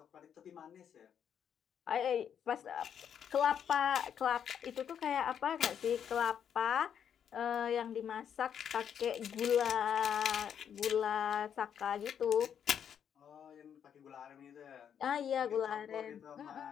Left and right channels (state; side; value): quieter; right; 8.4 dB